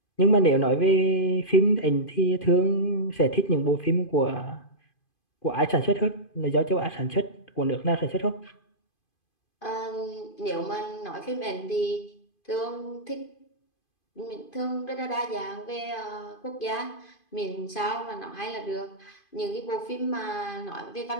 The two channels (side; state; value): right; late; 2.5 ms